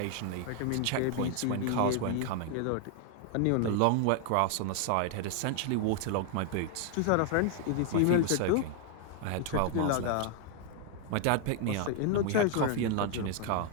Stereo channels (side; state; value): both; different; correlation 0.00